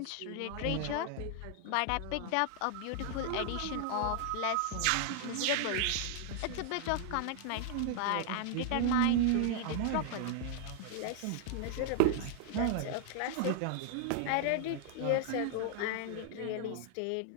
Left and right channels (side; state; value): both; different; correlation 0.00